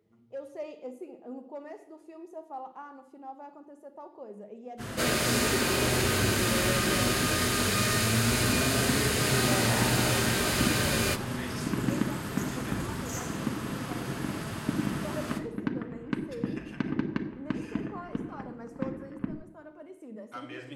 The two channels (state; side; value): identical; both; correlation 1.00